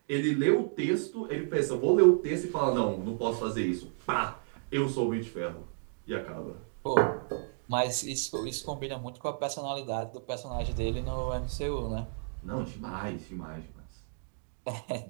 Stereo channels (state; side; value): silent; left; digital silence